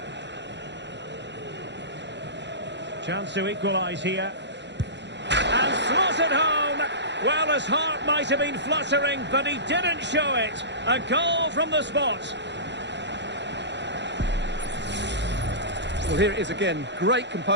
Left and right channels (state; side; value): late; left; 0.52 ms